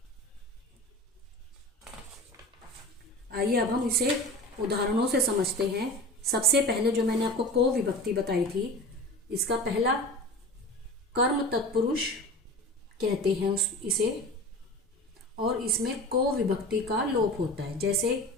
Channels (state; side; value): normal; both; correlation 0.34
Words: आइए अब हम इसे उदाहरणों से समझते हैं। सबसे पहले जो मैंने आपको को विभक्ति बताई थी, इसका पहला कर्म तत्पुरुष कहते हैं इसे, और इसमें को विभक्ति का लोप होता है। जैसे